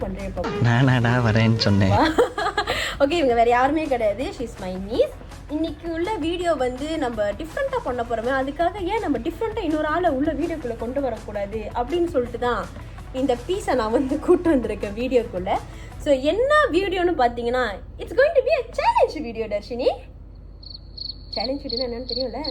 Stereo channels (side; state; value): both; identical; correlation 1.00